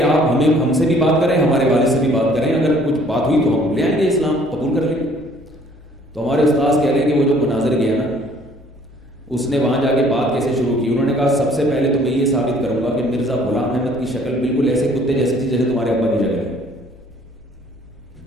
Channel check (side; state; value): right; noise; rumble, 27 dB below the sound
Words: آپ ہم سے بھی بات کریں، ہمارے والد سے بھی بات کریں، اگر کچھ بات ہوئی تو ہم لے آئیں گے، اسلام قبول کر لیں گے۔ تو ہمارے استاذ کہہ رہے ہیں کہ وہ جو مناظر گیا نا، اس نے وہاں جا کے بات کیسے شروع کی۔ انہوں نے کہا سب سے پہلے تو میں یہ ثابت کروں گا کہ مرزا غلام احمد کی شکل بالکل ایسے کتے جیسی تھی جیسے تمہارے ابا کی شکل ہے۔